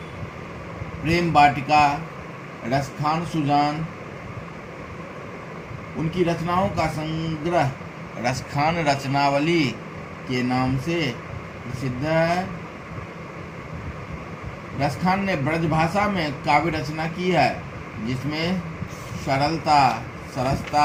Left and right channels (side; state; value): both; identical; correlation 1.00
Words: प्रेम वाटिका, रसखान सुजान। उनकी रचनाओं का संग्रह रसखान रचनावली के नाम से प्रसिद्ध है। रसखान ने ब्रजभाषा में काव्य रचना की है जिसमें सरलता,